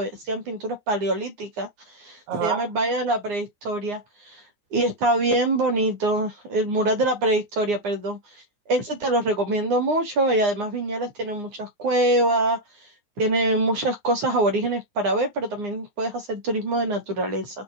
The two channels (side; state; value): left; late; 9.7 ms